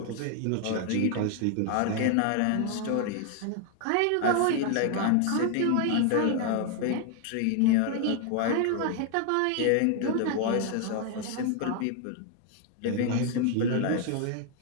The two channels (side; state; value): both; different; correlation 0.00